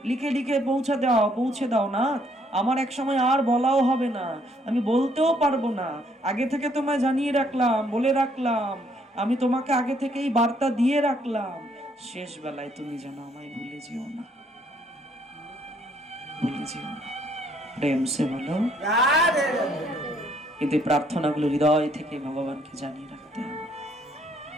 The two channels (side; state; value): both; normal; correlation 0.67